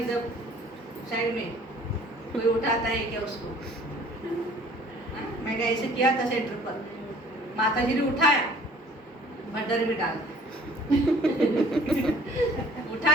साइड में कोई उठाता है क्या उसको। मैंने ऐसे किया था सेंटर पर, माता जी ने उठाया, भंडारे में डाल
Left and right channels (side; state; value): both; normal; correlation 0.53